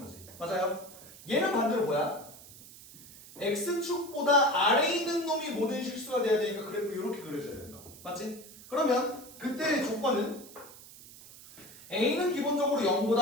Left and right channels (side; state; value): right; noise; hiss, 18 dB below the sound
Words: 맞아요? 얘는 반대로 뭐야? x축보다 아래에 있는 놈이 모든 실수가 돼야 되니까 그래프 이렇게 그려줘야 된다. 맞지? 그러면 그때의 조건은 a는 기본적으로